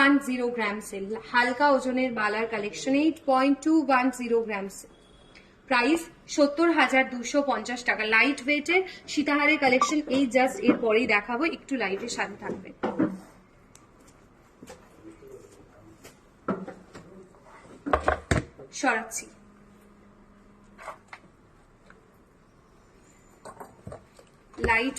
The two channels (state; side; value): identical; both; correlation 1.00